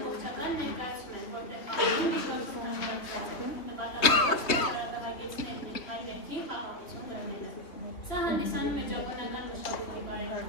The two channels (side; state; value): right; late; 3.2 ms